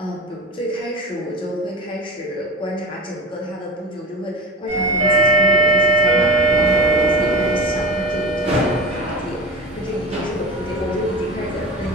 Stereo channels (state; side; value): normal; both; correlation 0.30